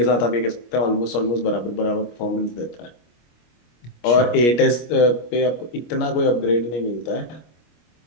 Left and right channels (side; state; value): right; late; 25 ms